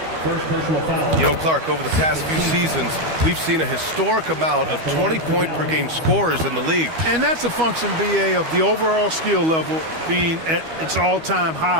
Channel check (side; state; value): left; late; 12 ms